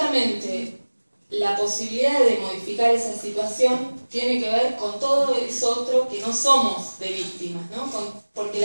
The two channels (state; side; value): inverted; both; correlation -1.00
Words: la posibilidad de modificar esa situación tiene que ver con todo eso otro que no somos de víctimas, ¿no? Porque